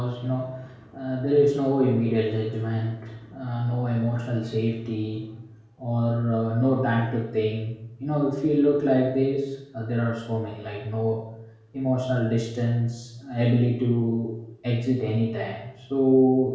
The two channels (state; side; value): identical; both; correlation 1.00